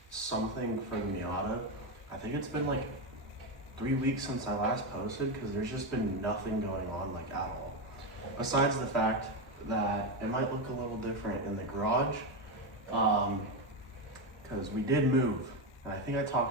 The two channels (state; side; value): normal; both; correlation 0.11